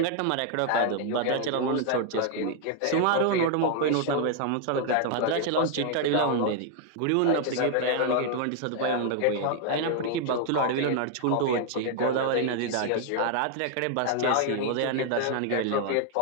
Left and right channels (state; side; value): different; both; correlation 0.00